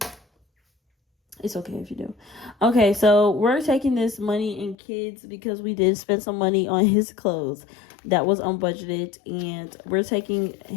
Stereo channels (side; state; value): right; drops out; at 4.8 s